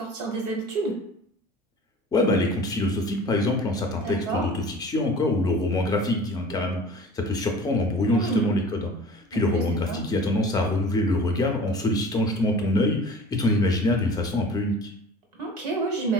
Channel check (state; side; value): normal; both; correlation 0.42